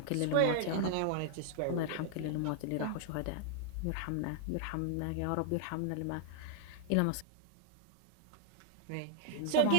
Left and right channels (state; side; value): different; both; correlation -0.01